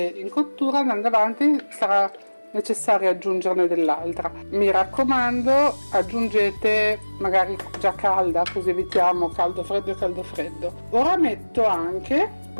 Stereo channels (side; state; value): both; inverted; correlation -1.00